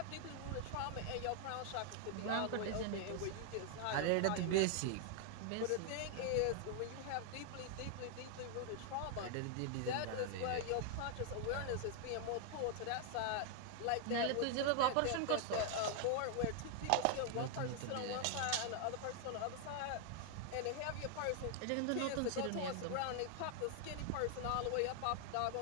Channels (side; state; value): both; different; correlation 0.00